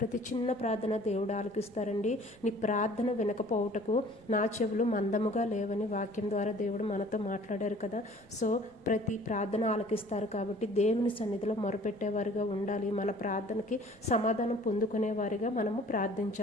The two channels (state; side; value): noise; left; rumble, 30 dB below the sound